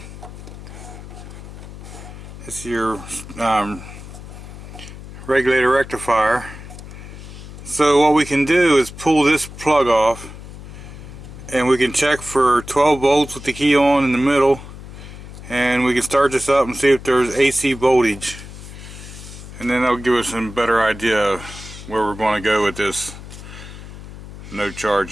This is your regulator rectifier. So what we can do is pull this plug off and we can check for 12 volts with the key on in the middle, and we can start this up and see if there's AC voltage, and then that'll give us a better idea of where we're going to go with this no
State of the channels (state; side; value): noise; left; hum, 14 dB below the sound